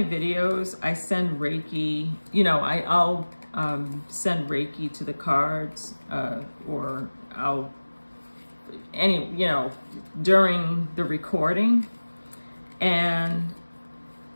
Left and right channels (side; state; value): both; inverted; correlation -1.00